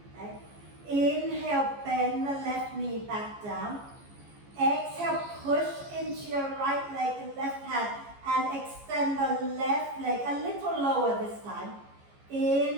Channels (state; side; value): late; left; 14 ms